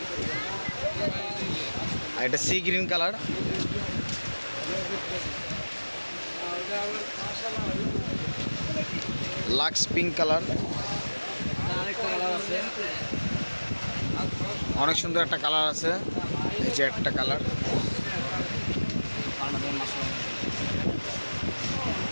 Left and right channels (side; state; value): both; inverted; correlation -1.00